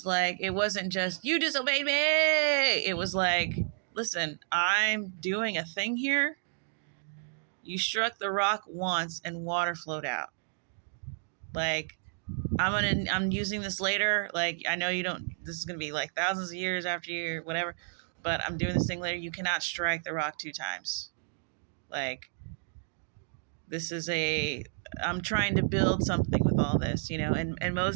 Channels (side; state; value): left; silent; digital silence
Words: like, it wasn't just, you disobeyed me. It was like, listen, I'm doing a thing here. You struck the rock once and water flowed out. Like, I'm using this later. Like, I know this is going to be like thousands of years after you, whatever, but I'm doing this thing later. You cannot strike the rock 2 times. Like, I'm trying to build something with all this, and